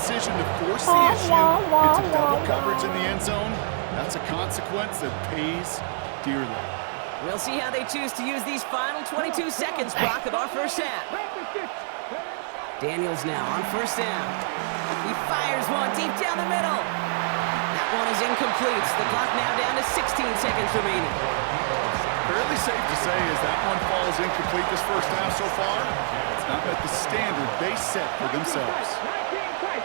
to force the issue into double coverage in the end zone, that's a consequence that pays dearly. We'll see how they choose to use these final 22 seconds, Brock, of our first half. Daniels now on first down. He fires one deep down the middle. That one is incomplete. The clock now down to 16 seconds remaining. Fairly safe to say as that one falls incomplete this first half so far, it's not met the standard they set for themselves. 19 tight.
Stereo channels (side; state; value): left; silent; digital silence